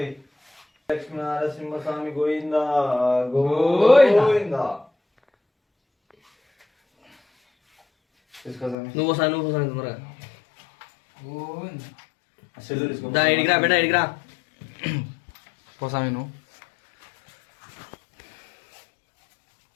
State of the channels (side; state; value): right; drops out; at 8.8 s